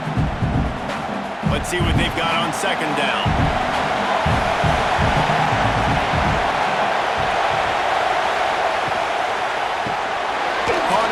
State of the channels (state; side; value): identical; both; correlation 1.00